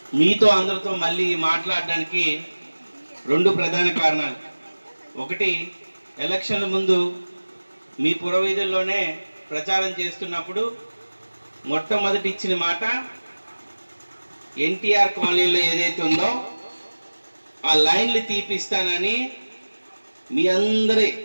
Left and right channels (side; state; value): both; inverted; correlation -1.00